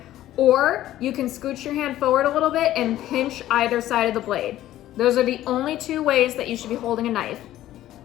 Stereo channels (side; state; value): right; quieter; 13.8 dB